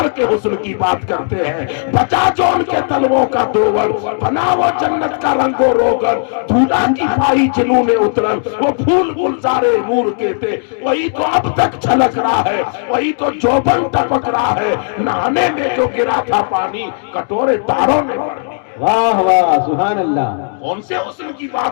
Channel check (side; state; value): right; silent; digital silence